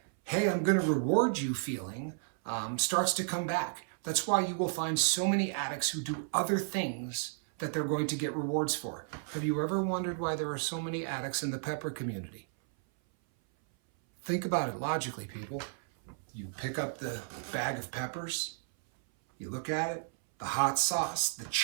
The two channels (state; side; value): silent; left; 56 dB below the other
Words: hey, I'm going to reward you feeling, starts to come back. That's why you will find so many addicts who do other things that they're going to get rewards for. Have you ever wondered why there are so many addicts in the pepper community? Think about it logically, people. You pick up the bag of peppers, you look at it, the hot sauce, the